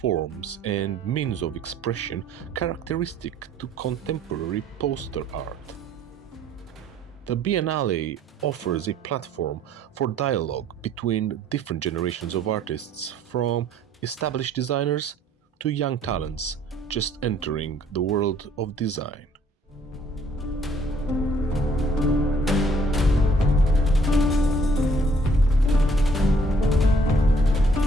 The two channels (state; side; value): normal; both; correlation 0.61